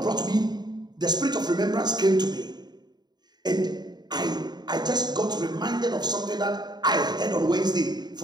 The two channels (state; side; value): late; left; 0.20 ms